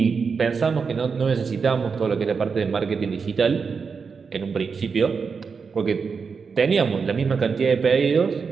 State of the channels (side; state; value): left; quieter; 5.4 dB